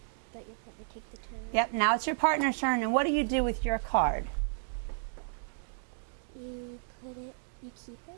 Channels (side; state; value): left; silent; digital silence